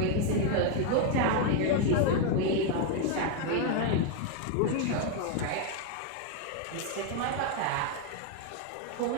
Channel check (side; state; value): both; different; correlation 0.01